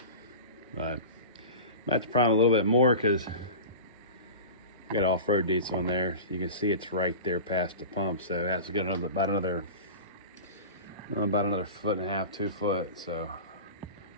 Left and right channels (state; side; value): inverted; both; correlation -0.33